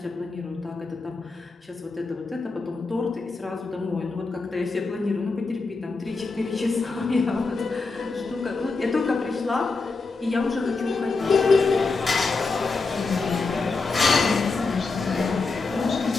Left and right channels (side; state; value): right; quieter; 4.0 dB